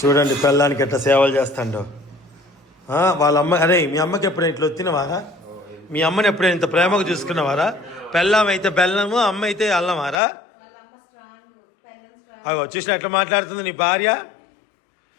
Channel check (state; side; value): drops out; right; at 10.2 s